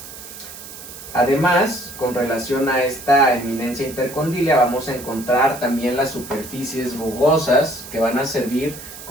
Además, con relación a esta eminencia intercondílea, vamos a encontrar también las superficies rugosas que van a servir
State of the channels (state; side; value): noise; right; hiss, 14 dB below the sound